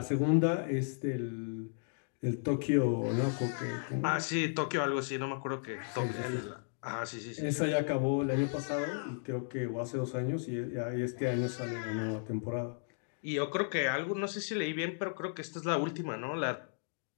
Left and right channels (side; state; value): right; silent; digital silence